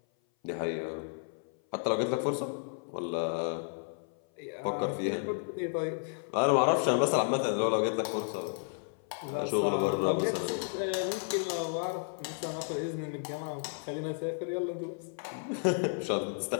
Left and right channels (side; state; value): right; silent; 56 dB below the other